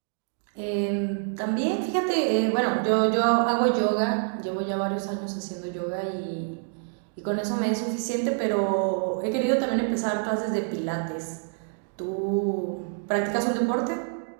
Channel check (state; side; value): silent; left; 60 dB below the other